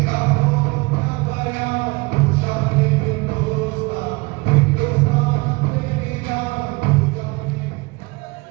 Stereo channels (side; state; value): left; quieter; 25.6 dB